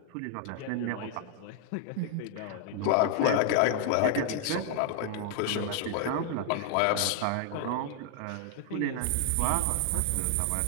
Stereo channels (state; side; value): different; both; correlation 0.00